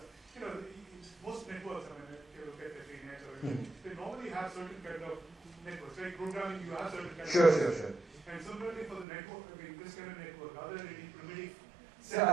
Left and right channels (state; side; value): drops out; left; at 9.1 s